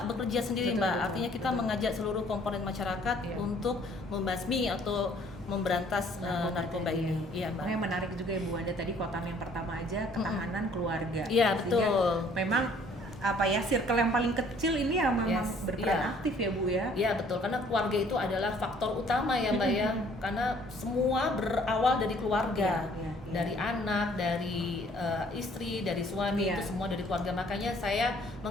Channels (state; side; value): normal; both; correlation 0.59